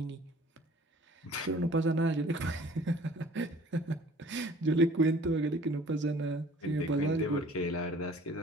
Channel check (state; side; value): normal; both; correlation 0.51